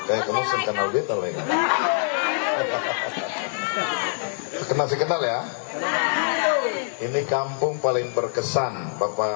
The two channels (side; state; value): right; silent; digital silence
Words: Kayak kamu kenal beta lah ya. Kenal ya. Ini kampung paling berkesan,